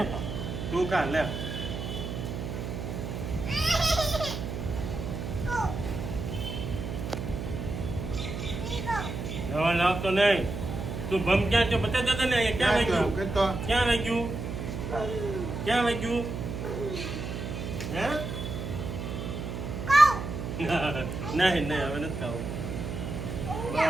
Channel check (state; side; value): noise; right; hum, 5 dB below the sound